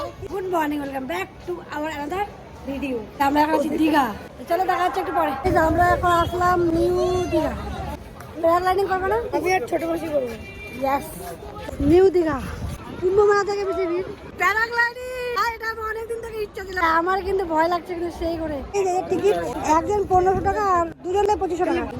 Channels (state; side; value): identical; both; correlation 1.00